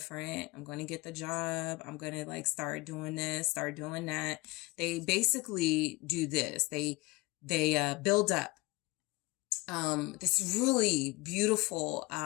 I'm going to get the job. I'm going to like start doing this, start doing that. They basically do this. They build up this really beautiful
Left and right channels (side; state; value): right; quieter; 22.6 dB